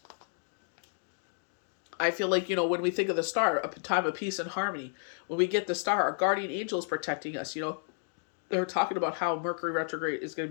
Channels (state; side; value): silent; right; digital silence